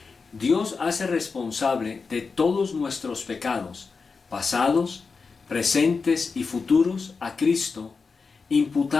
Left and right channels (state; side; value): quieter; right; 4.8 dB